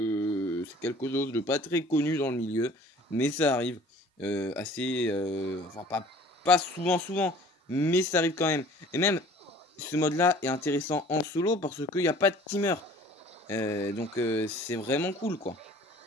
c'est quelque chose de pas très connu dans le milieu, mais ça arrive assez, enfin pas souvent, mais ça arrive quand même. Et même, ce mode-là est intéressant en solo, parce qu'il n'y a pas de teamer. Donc c'est vraiment cool, quoi.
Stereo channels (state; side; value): normal; both; correlation 0.50